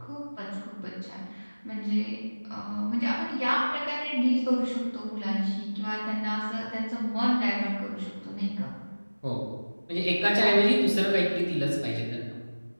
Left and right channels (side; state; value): both; inverted; correlation -1.00